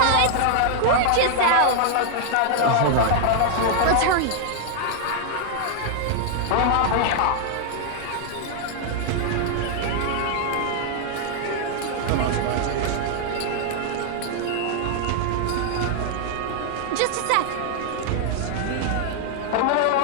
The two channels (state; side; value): different; both; correlation -0.01